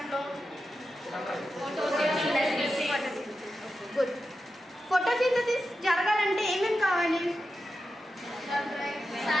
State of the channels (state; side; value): normal; both; correlation 0.90